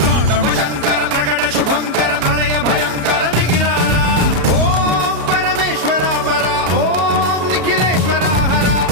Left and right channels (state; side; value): late; left; 33 ms